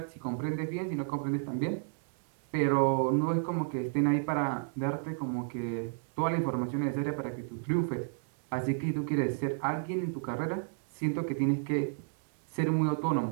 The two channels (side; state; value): left; silent; 56 dB below the other